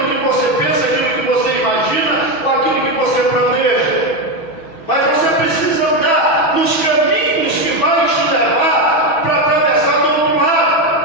que você pensa, aquilo que você imagina, ou aquilo que você planeja. Mas você precisa andar nos caminhos que vai te levar para atravessar do outro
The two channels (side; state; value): right; late; 6.1 ms